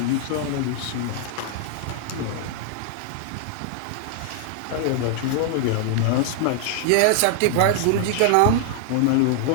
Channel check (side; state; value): both; different; correlation 0.00